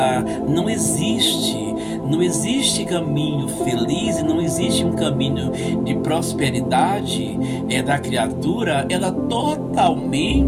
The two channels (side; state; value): both; identical; correlation 1.00